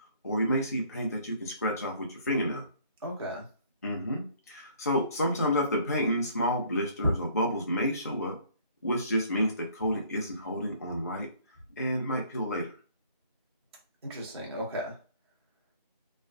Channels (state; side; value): inverted; both; correlation -0.57